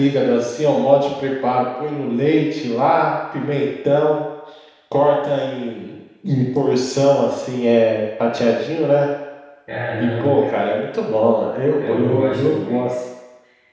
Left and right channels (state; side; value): identical; both; correlation 1.00